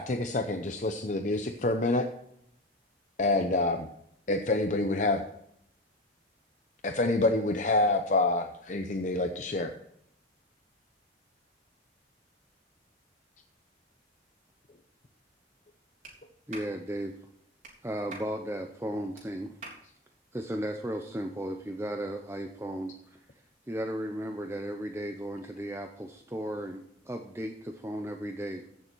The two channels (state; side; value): normal; both; correlation 0.25